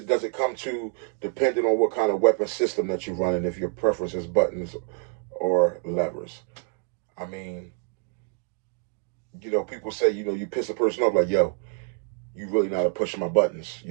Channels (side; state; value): left; quieter; 32.0 dB